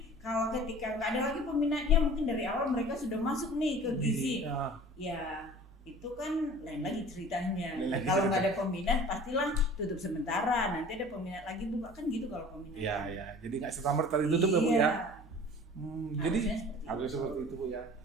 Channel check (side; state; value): both; normal; correlation 0.44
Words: kalau ketika nggak ada lagi peminatnya, mungkin dari awal mereka sudah masuk nih ke gizi. Ya itu kan lain lagi ceritanya. Kalau nggak ada peminat pastilah tutup sementara, nanti ada peminat lagi buka, kan gitu kalau peminat. Iya. Jadi nggak serta-merta ditutup ya, Bu ya? Jadi harus seperti itu, Bu ya.